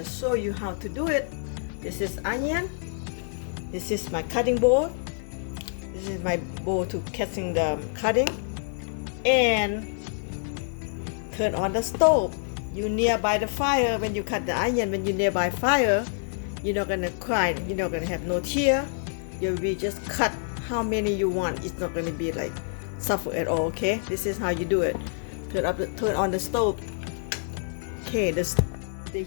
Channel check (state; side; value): silent; right; digital silence